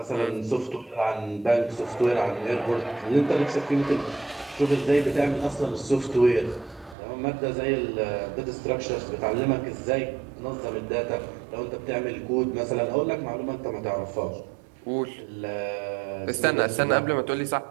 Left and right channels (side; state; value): left; drops out; at 7.0 s